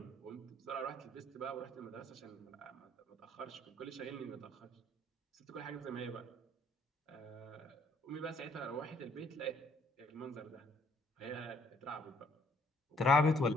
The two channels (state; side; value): normal; both; correlation 0.65